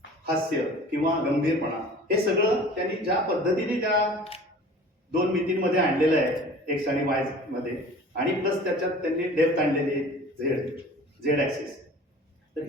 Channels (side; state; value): both; normal; correlation 0.44